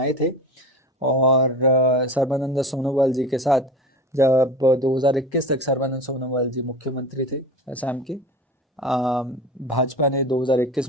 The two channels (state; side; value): normal; both; correlation 0.32